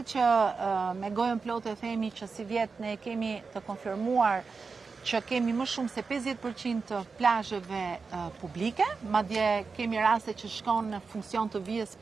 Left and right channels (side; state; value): left; quieter; 4.7 dB